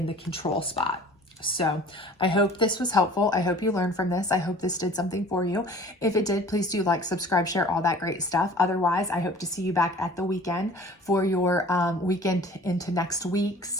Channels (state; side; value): normal; both; correlation 0.47